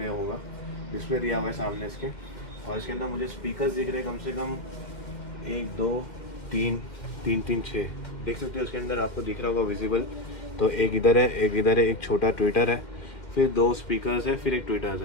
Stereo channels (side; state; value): right; late; 2.1 ms